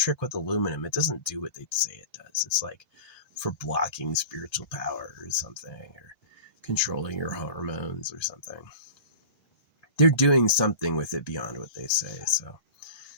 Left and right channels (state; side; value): late; right; 1.3 ms